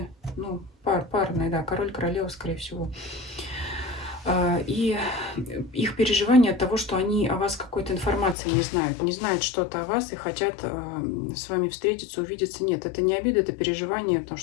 Ну, парные, да, король, королева, скорее всего. И их переживания от того, что они о вас какой-то информации не знают. Не знают что-то о вас и хотят с вами встретиться, увидеться. Нет, это не обида, это переживание, потому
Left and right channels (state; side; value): drops out; right; at 8.3 s